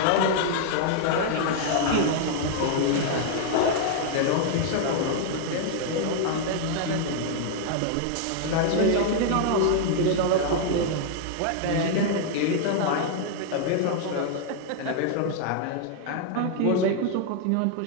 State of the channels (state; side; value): different; both; correlation 0.00